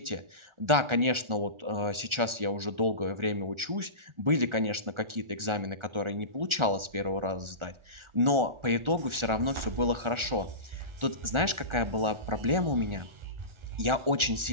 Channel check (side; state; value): left; late; 1.4 ms